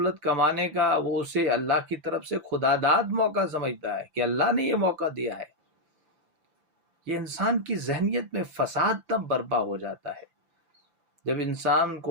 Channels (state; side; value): late; left; 5.9 ms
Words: کمانے کا، وہ اسے اللہ کی طرف سے خداداد موقع سمجھتا ہے کہ اللہ نے یہ موقع دیا ہے۔ یہ انسان کی ذہنیت میں فساد تب برپا ہو جاتا ہے جب انسان